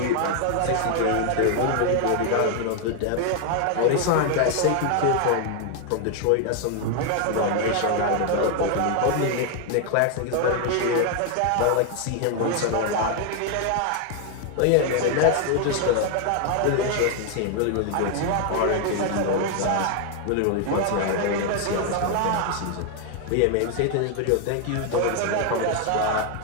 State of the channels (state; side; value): different; both; correlation 0.00